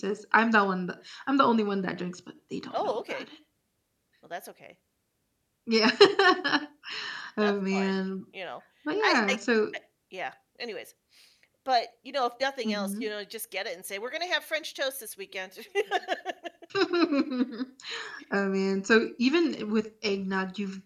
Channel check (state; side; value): identical; both; correlation 1.00